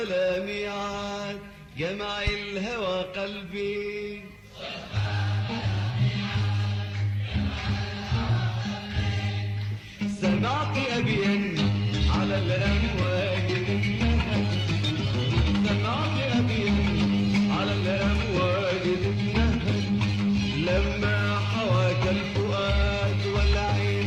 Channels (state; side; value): identical; both; correlation 1.00